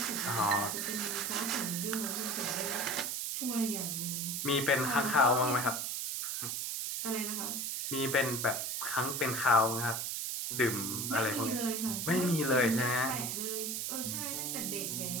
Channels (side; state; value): right; noise; hiss, 2 dB below the sound